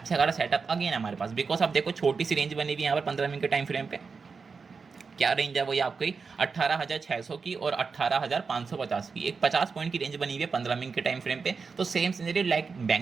खासा सेटअप अगेन हमारे पास, बिकॉज आप देखो छोटी सी रेंज बनी हुई है यहाँ पर 15 मिनट के टाइम फ्रेम पे, क्या रेंज है वो ये आपकी 18,600 की और 18,550 की, एक 50 पॉइंट की रेंज बनी हुई है 15 मिनट के टाइम फ्रेम पे। तो same scenario like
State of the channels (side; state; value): left; quieter; 5.0 dB